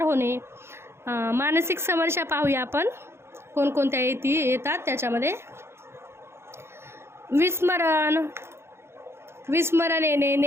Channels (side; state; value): left; late; 0.12 ms